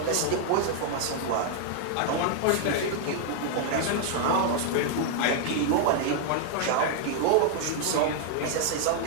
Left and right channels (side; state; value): both; different; correlation 0.00